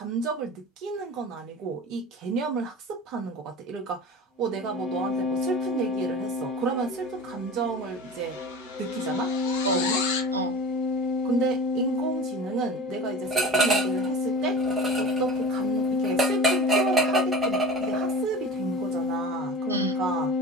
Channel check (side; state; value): both; normal; correlation 0.35